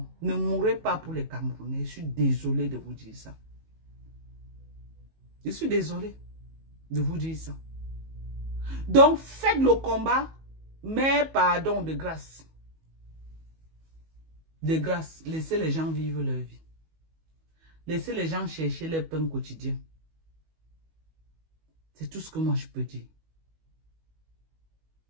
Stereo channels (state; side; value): late; left; 19 ms